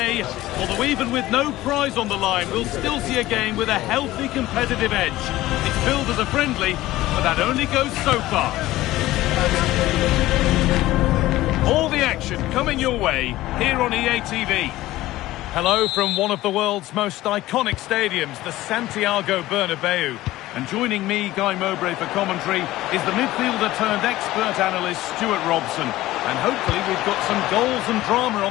Although even with no prize on the line, we'll still see a game with a healthy competitive edge. It's billed as a friendly, but that only goes so far. All the action coming your way here on EA TV. Hello from one of the world's most iconic stadiums, the Santiago Bernabeu. And joining me, Guy Mowbray, for commentary is the midfielder turned expert analyst Stuart Robson. And hopefully we've got some goals and drama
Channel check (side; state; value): right; quieter; 16.5 dB